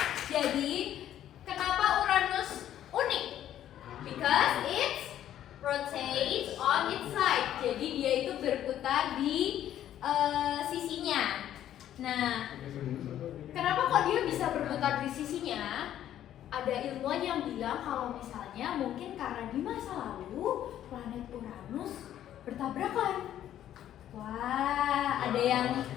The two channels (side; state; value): right; quieter; 11.5 dB